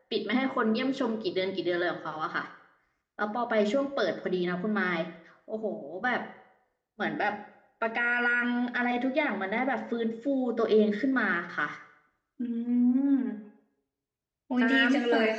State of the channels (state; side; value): identical; both; correlation 1.00